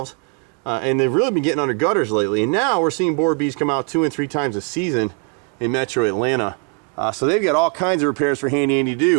and they've really been getting under gutters lately. And now we're seeing borer bees come out 2 and 3 times a season in metro Atlanta. So they've got all kinds of repairs for Handy Andy to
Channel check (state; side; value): quieter; left; 35.8 dB